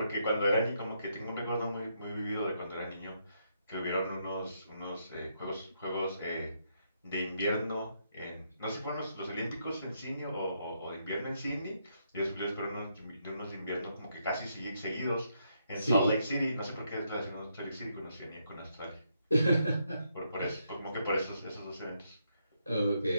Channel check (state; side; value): inverted; both; correlation -0.77